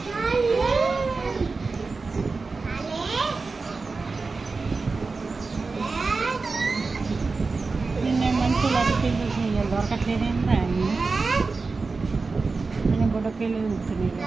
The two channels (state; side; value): quieter; left; 4.1 dB